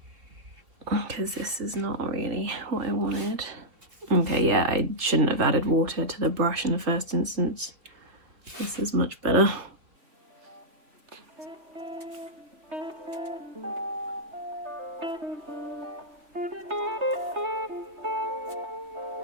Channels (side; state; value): left; late; 3.2 ms